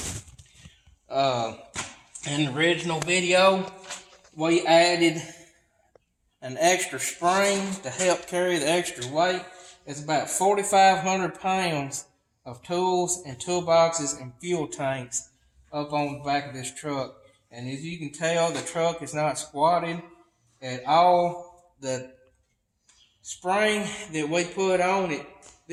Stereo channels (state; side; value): identical; both; correlation 1.00